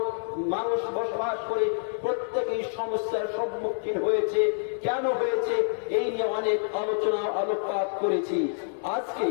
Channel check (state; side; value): silent; right; 60 dB below the other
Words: মানুষ বসবাস করে প্রত্যেকেই সমস্যার সম্মুখীন হয়েছে। কেন হয়েছে এই নিয়ে অনেক আলোচনা আলোকপাত করেছি। আজকে